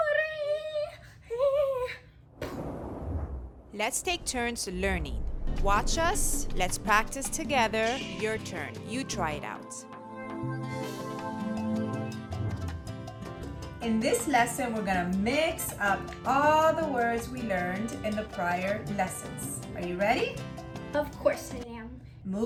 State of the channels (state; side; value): identical; both; correlation 1.00